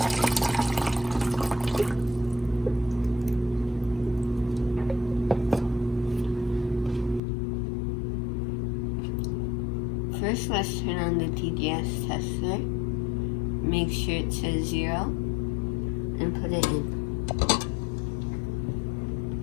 First, let's turn on the TDS tester. Make sure it says 0 and put it in.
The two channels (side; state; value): right; drops out; at 7.2 s